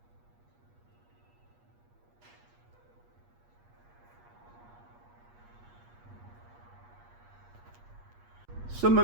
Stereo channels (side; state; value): left; late; 8.4 ms